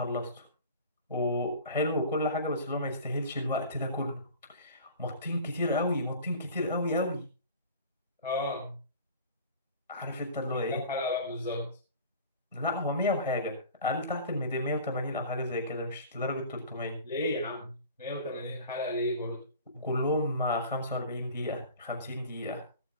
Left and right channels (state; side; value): inverted; both; correlation -0.41